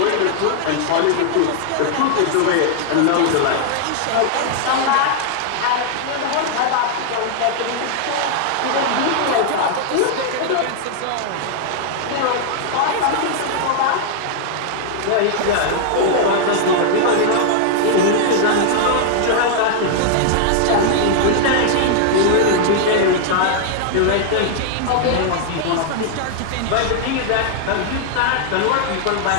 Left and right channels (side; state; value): both; different; correlation -0.01